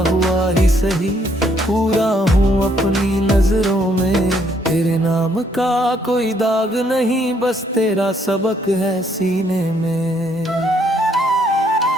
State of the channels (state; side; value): normal; both; correlation 0.69